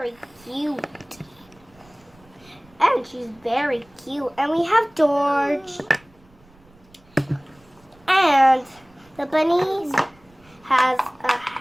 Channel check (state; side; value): noise; right; rumble, 29 dB below the sound